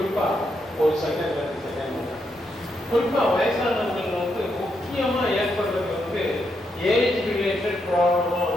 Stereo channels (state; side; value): normal; both; correlation 0.81